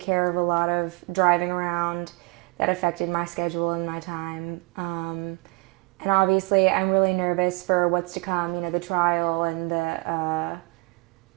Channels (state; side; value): quieter; left; 27.8 dB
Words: of a lot of driving around that affected my schedule and my time. And obviously, I'm really nervous for what's to come. The trial and